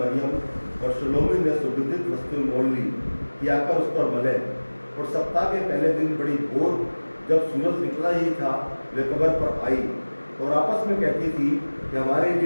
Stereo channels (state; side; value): inverted; both; correlation -1.00